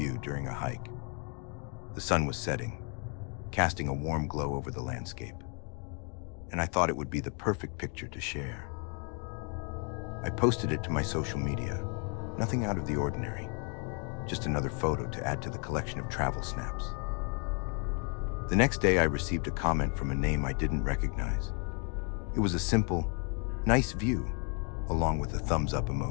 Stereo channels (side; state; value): right; quieter; 37.9 dB